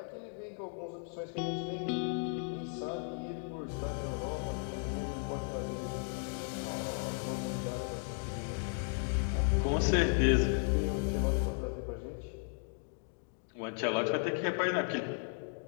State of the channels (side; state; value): right; silent; 54 dB below the other